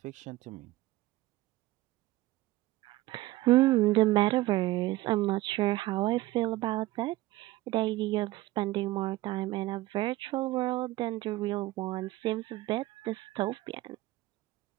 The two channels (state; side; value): quieter; left; 17.5 dB